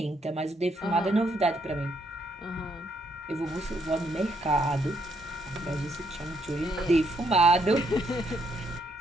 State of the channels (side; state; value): both; normal; correlation 0.74